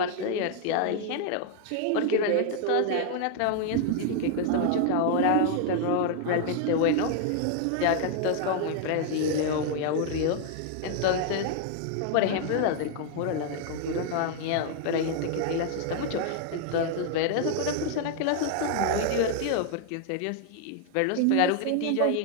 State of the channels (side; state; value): both; different; correlation 0.00